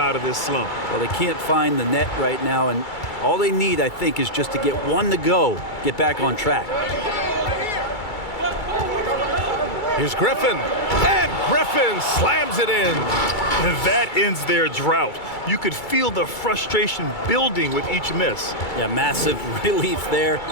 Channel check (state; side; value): late; right; 2.3 ms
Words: of this slump. Well, they can't find the net right now, and all they need, I think, is just to get one to go, get back on track. Here's Griffin, and Griffin slams it in. And that ends their drought. You could feel the frustration building with each miss. Yeah, massive relief there,